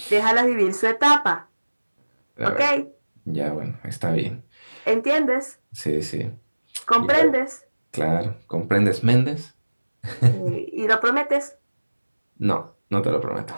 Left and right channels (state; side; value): inverted; both; correlation -1.00